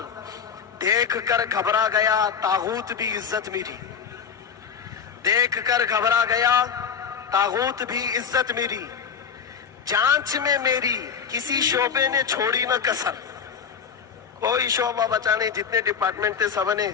دیکھ کر گھبرا گیا طاغوت بھی عزت میری، دیکھ کر گھبرا گیا طاغوت بھی عزت میری۔ جانچ میں میری کسی شعبے نے چھوڑی نہ کسر، کوئی شعبہ بچا نہیں، جتنے ڈپارٹمنٹ تھے سب نے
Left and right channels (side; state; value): right; quieter; 6.9 dB